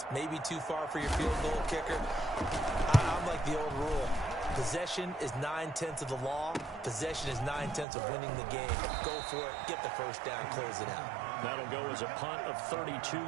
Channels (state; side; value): drops out; left; at 7.9 s